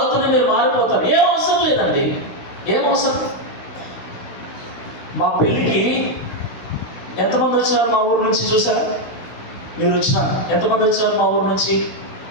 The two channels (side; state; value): right; late; 16 ms